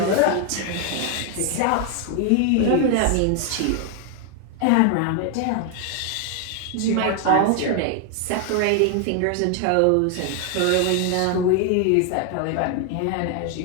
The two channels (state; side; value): different; both; correlation 0.01